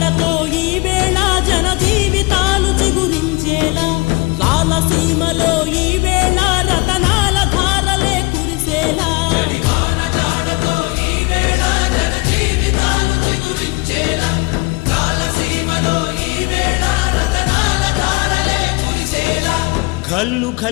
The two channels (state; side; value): quieter; right; 25.6 dB